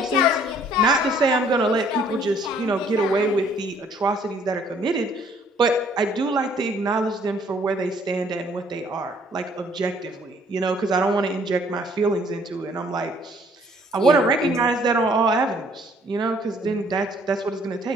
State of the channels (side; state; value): both; normal; correlation 0.61